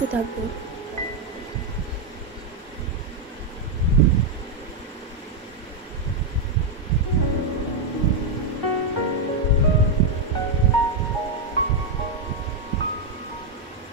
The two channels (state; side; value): quieter; left; 3.0 dB